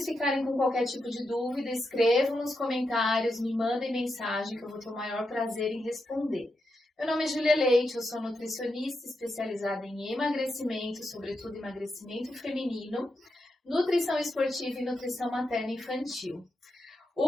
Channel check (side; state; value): both; normal; correlation 0.86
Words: ficarem com qualquer tipo de dúvida, escrevam nos comentários, me mandem mensagem que eu vou ter o maior prazer em responder. Meu nome é Júlia Leite, eu sou nutricionista especializada em emagrecimento, sobretudo emagrecimento feminino, nutrição esportiva e nutrição materna infantil.